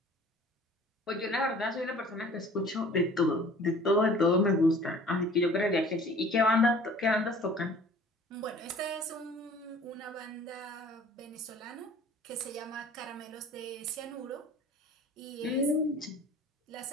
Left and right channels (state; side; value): normal; both; correlation 0.48